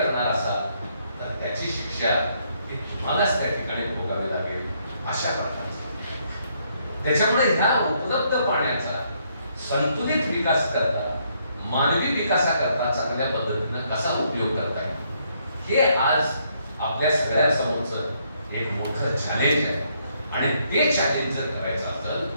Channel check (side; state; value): both; inverted; correlation -0.72